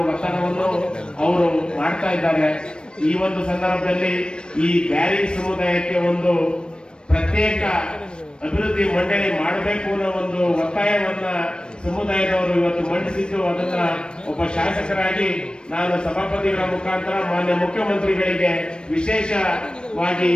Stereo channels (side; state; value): right; late; 0.053 ms